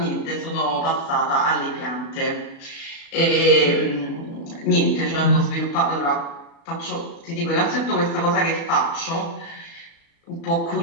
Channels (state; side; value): late; right; 36 ms